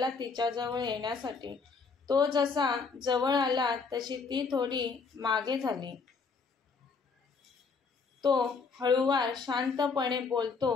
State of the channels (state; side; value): quieter; right; 4.9 dB